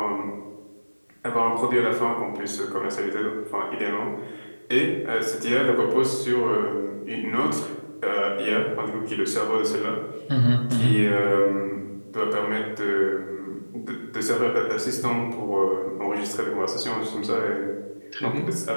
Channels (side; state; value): both; inverted; correlation -1.00